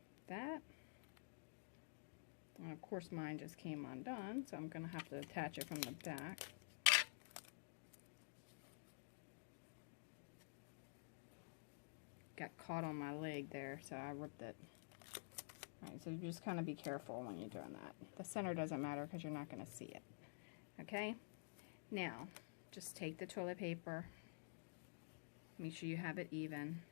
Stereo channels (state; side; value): silent; right; digital silence